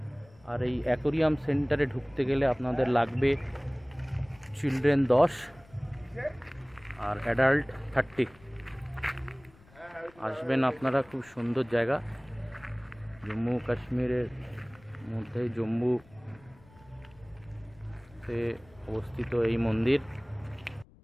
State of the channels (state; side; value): noise; left; rumble, 26 dB below the sound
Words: আর এই অ্যাকোরিয়াম সেন্টারে ঢুকতে গেলে আপনাদের লাগবে চিলড্রেন 10 আর অ্যাডাল্ট 30। আসবেন আপনারা, খুব সুন্দর জায়গা। জম্মু কাশ্মীরের মধ্যে জম্মুতে অবস্থিত এই মন্দির।